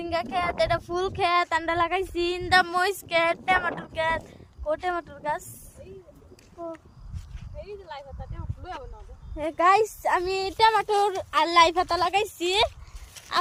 খেত এটা ফুল খেত আমরা লাগাইছি ইন্দা মরিচ খেত টমেটোর খেত টমেটোর গাছ গাইস আমি টমেটোর আর লাই পাতা লাগাইছি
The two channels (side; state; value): both; identical; correlation 1.00